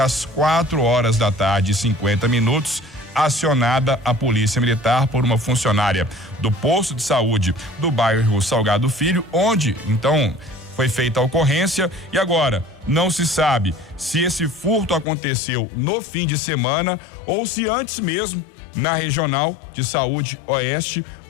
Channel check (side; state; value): right; drops out; at 15.1 s